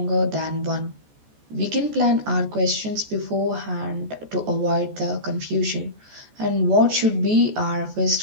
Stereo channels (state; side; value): late; left; 14 ms